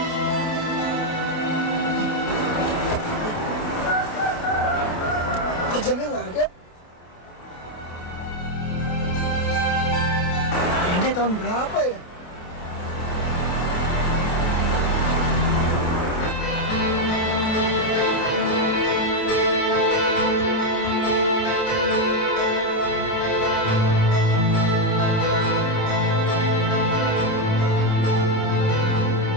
Kok jamnya nggak ada? Ini tahun berapa ya?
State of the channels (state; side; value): late; right; 28 ms